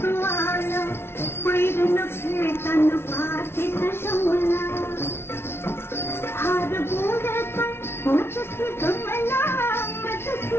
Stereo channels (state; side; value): late; right; 0.12 ms